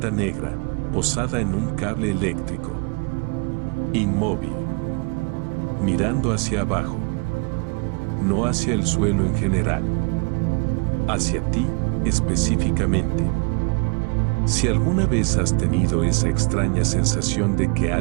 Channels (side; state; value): left; quieter; 32.7 dB